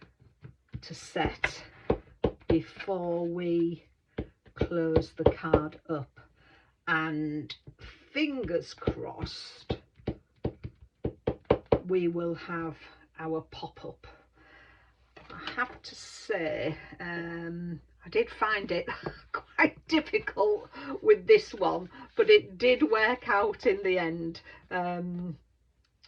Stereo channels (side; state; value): both; identical; correlation 1.00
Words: to set before we close the card up. And fingers crossed we will have our pop-up. I have to say, I did find it quite difficult with this one, but it did work out in the end.